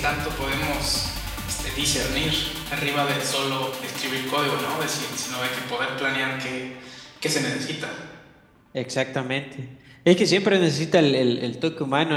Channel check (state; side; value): identical; both; correlation 1.00